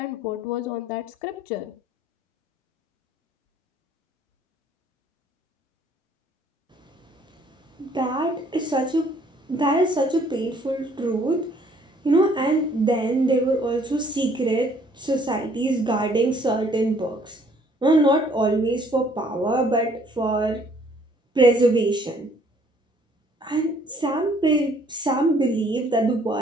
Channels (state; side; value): normal; both; correlation 0.61